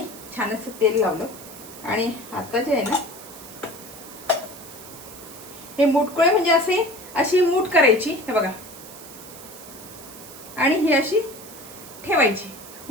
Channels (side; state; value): right; noise; hiss, 16 dB below the sound